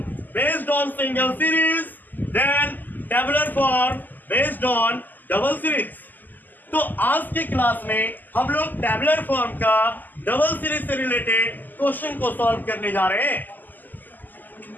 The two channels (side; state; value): right; late; 0.086 ms